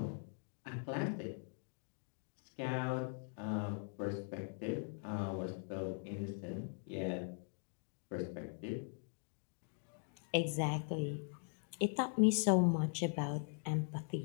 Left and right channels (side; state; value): right; silent; 50 dB below the other